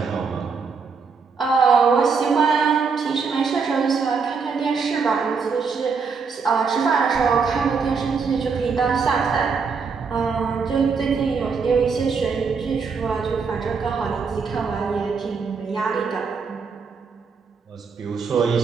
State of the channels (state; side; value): quieter; left; 5.3 dB